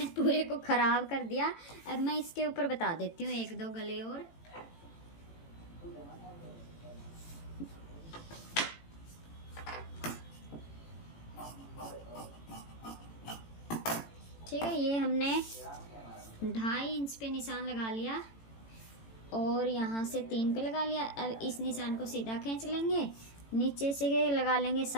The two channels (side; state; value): right; late; 18 ms